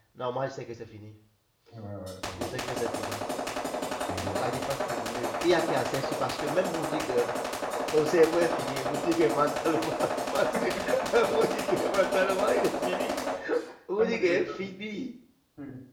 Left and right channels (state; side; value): identical; both; correlation 1.00